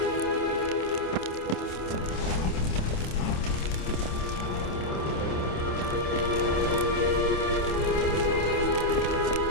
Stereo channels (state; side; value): late; right; 27 ms